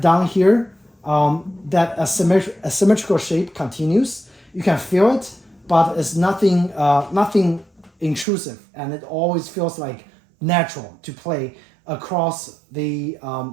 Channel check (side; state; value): left; drops out; at 8.2 s